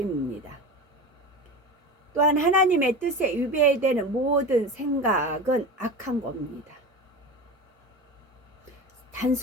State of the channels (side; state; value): both; normal; correlation 0.28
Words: 또한 하나님의 뜻에 위배되는 모든 생각은 악한 겁니다.